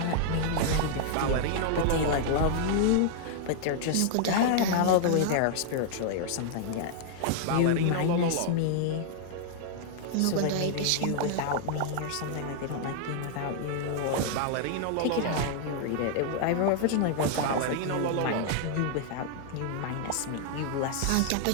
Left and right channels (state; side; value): different; both; correlation -0.01